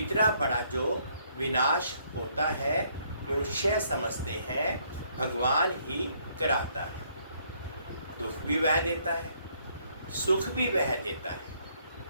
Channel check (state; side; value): inverted; both; correlation -0.68